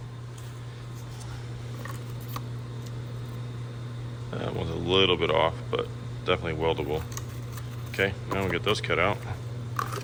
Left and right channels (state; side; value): identical; both; correlation 1.00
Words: That one's a little bit off, but definitely weldable. Okay, now we'll get those cut out.